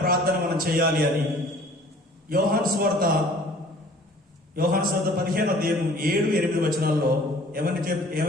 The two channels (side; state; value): both; normal; correlation 0.51